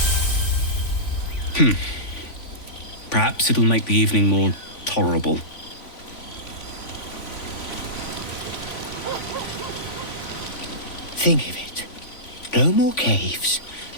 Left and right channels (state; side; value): late; right; 3.5 ms